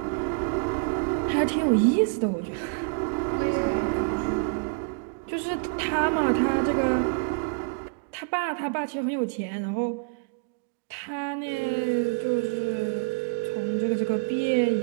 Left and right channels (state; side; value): quieter; left; 33.3 dB